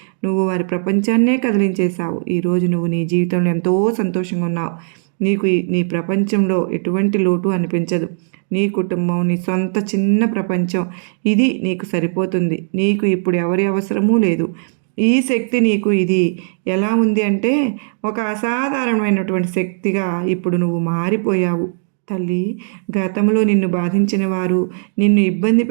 నువ్వు వారి ప్రపంచాన్నే కదిలించేశావు. ఈరోజు నువ్వు నీ జీవితంలో ఎంతో సంతోషంగా ఉన్నావు. నీకు నీ ప్రపంచంలో ఎటువంటి లోటు అనిపించదు. నీ కుటుంబం, నీ సొంత చిన్న ప్రపంచం, ఇది నీకు సరిపోతుంది. నీకు ఇప్పుడు ఎవరి అవసరమూ లేదు. ఈ శక్తి నీకు ఇది ఎలా ఉంది అంటే ఒక అసాధారణమైనటువంటి శక్తిగా ఇప్పుడు నువ్వు మారిపోయావు. తల్లి, గతంలో నిన్ను బాధించిన వారు, నిన్ను ఇబ్బంది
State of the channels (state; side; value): silent; left; digital silence